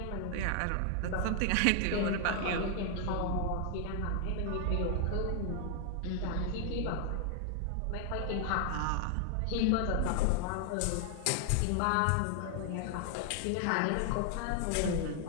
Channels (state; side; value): different; both; correlation 0.00